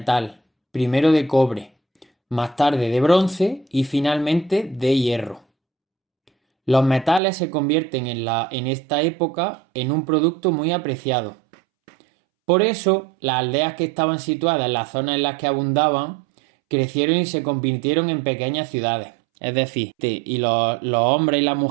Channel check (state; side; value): drops out; left; at 7.2 s